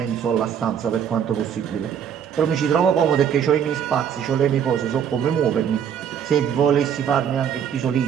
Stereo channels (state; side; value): quieter; left; 8.3 dB